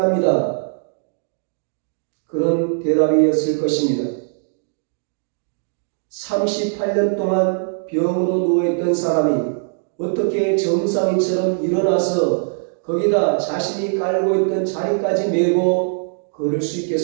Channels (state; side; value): silent; left; digital silence